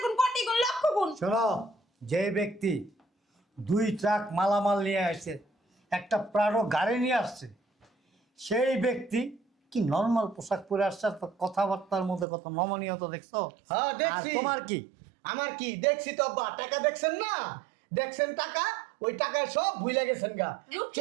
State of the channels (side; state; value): left; drops out; at 12.2 s